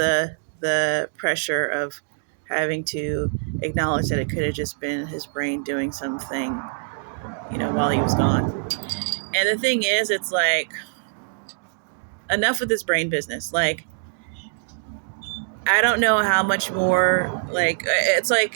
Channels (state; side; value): silent; left; digital silence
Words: pressure of having to acknowledge that it could have just been his brain doing something, while he was gone. And the thing is, it's like, enough with this brain business. Like, I don't know how much more, like,